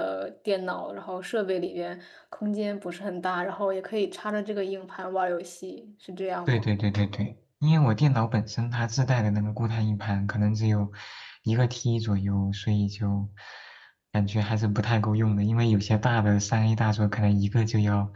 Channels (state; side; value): identical; both; correlation 1.00